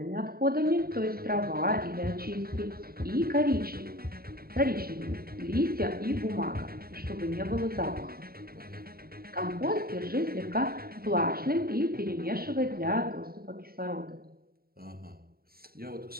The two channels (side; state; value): left; late; 0.44 ms